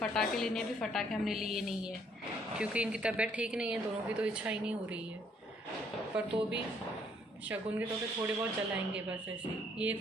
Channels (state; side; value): normal; both; correlation 0.66